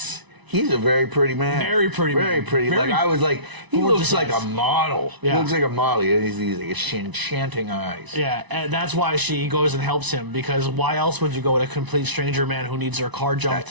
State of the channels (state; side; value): late; left; 1.0 ms